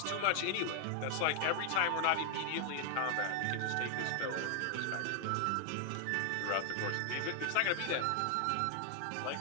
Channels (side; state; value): both; different; correlation 0.00